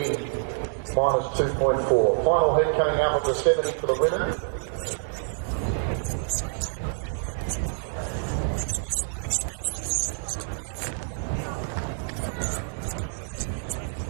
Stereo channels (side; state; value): left; silent; 60 dB below the other